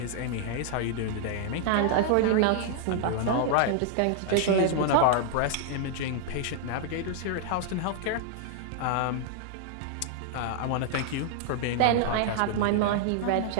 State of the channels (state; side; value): different; both; correlation -0.01